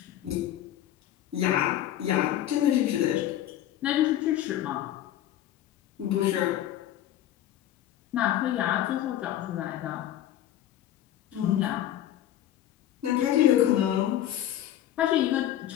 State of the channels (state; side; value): quieter; right; 12.3 dB